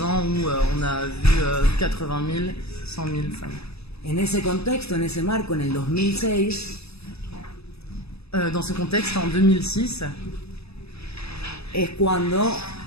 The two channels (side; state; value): right; late; 0.79 ms